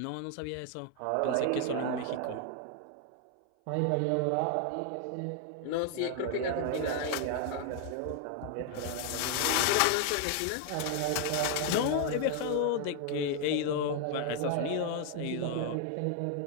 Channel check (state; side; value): different; both; correlation 0.00